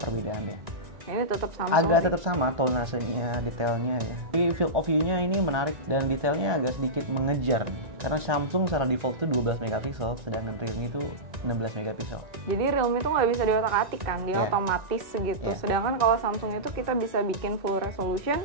Ini tetap sama. Agak tetap sama tonasenya, detailnya ya. Tapi field of view-nya ini menarik dan detailnya agak sedikit mengejar. Karena Samsung secara default itu 12 megapiksel, sedangkan Realme itu 16 megapiksel. Jadi Realme itu nggak bisa diotak-atik kan, dia otomatis segitu. Sedangkan kalau Samsung itu kita bisa bikin full resolution,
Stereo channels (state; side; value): late; left; 1.9 ms